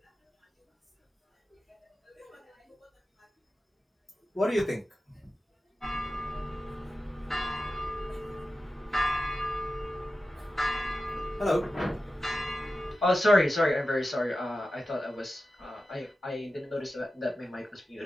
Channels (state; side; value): normal; both; correlation 0.93